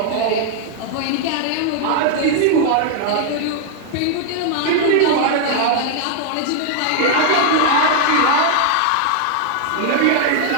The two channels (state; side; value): different; both; correlation 0.00